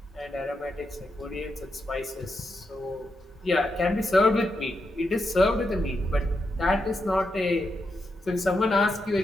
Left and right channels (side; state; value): both; normal; correlation 0.85